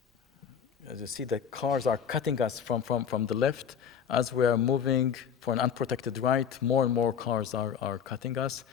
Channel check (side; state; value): right; quieter; 7.8 dB